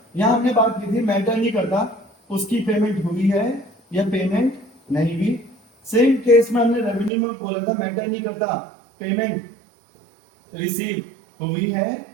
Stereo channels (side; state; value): left; drops out; at 7.1 s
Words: यहां हमने बात की थी, मैटर नहीं करता उसकी पेमेंट हुई है या पेमेंट नहीं हुई। सेम केस में हमने रेवेन्यू में बोला था, मैटर नहीं करता पेमेंट रिसीव हुई है